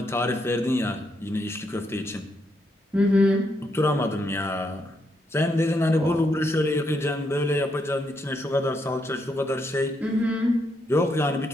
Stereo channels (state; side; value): normal; both; correlation 0.78